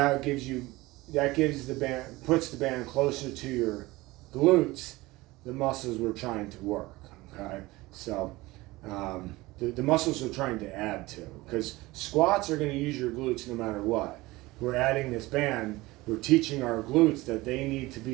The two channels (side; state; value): left; quieter; 20.2 dB